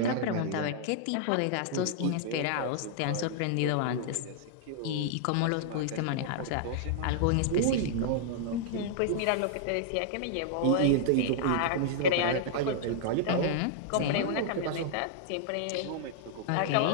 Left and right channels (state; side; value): different; both; correlation -0.01